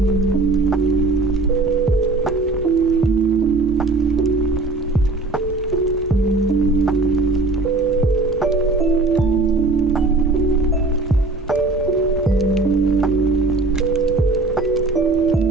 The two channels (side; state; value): left; quieter; 3.3 dB